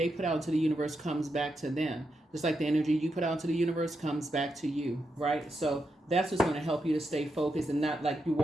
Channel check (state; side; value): normal; both; correlation 0.85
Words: put out into the universe comes back to them. Just like the energy you put out into the universe comes back to you, right? So that's what's going to help you to stay focused and not like you're